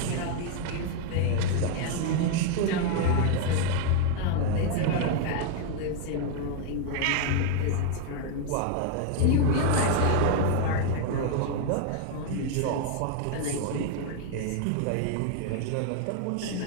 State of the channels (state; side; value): different; both; correlation 0.00